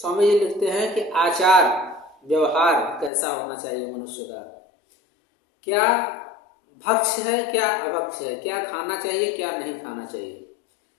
जी लिखते हैं कि आचार व्यवहार कैसा होना चाहिए मनुष्य का, क्या भक्ष है क्या अभक्ष है, क्या खाना चाहिए क्या नहीं खाना चाहिए,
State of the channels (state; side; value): drops out; right; at 3.1 s